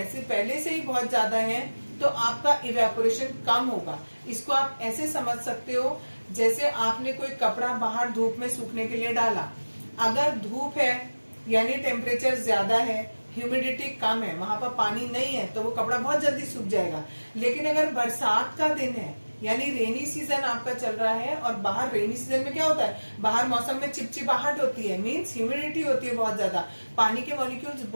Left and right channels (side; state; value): both; inverted; correlation -1.00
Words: से ही बहुत ज्यादा हैं तो आपका इवेपोरेशन कम होगा। इसको आप ऐसे समझ सकते हो जैसे आपने कोई कपड़ा बाहर धूप में सूखने के लिए डाला। अगर धूप है यानी टेम्परेचर ज्यादा है, ह्यूमिडिटी कम है, वहां पर पानी नहीं है तो वो कपड़ा बहुत जल्दी सूख जाएगा। लेकिन अगर बरसात का दिन है यानी रेनी सीजन आपका चल रहा है, और बाहर रेनी सीजन में क्या होता है? बाहर मौसम में चिपचिपाहट होती है, मीन्स ह्यूमिडिटी होती है बहुत ज्यादा, पानी के मॉलिक्यूल्स